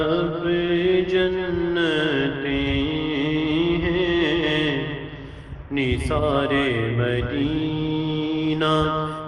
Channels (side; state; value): both; identical; correlation 1.00